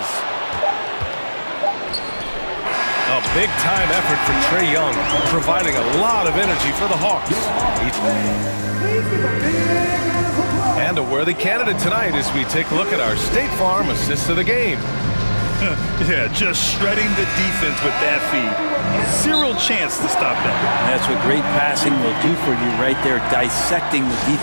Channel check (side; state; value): both; inverted; correlation -1.00